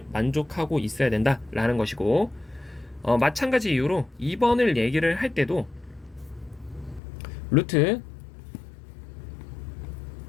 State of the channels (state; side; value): drops out; right; at 7.0 s